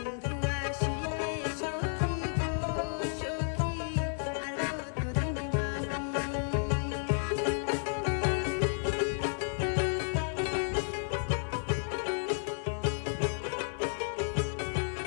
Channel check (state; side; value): silent; right; 56 dB below the other